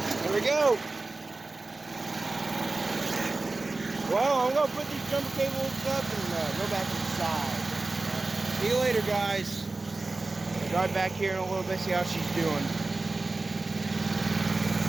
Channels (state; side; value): quieter; left; 3.4 dB